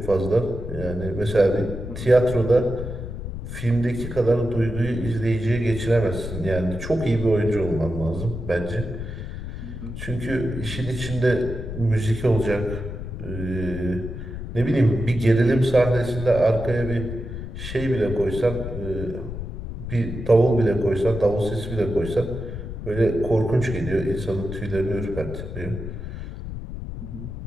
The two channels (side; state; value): left; noise; rumble, 8 dB below the sound